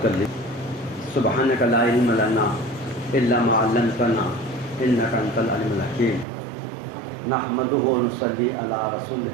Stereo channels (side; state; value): left; drops out; at 6.2 s